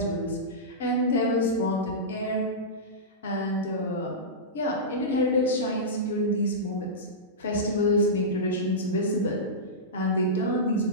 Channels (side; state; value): both; normal; correlation -0.15